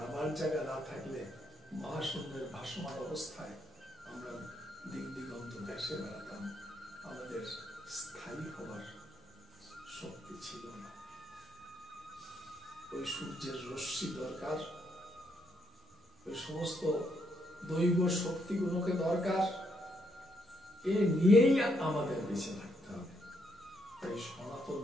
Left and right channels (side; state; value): both; normal; correlation 0.75